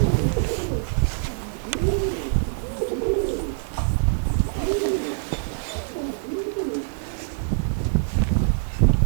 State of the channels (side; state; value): left; silent; 56 dB below the other